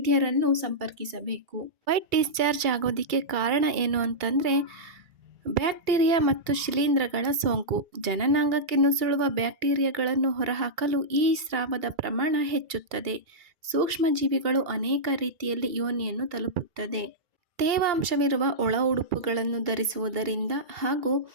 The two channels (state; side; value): late; left; 2.3 ms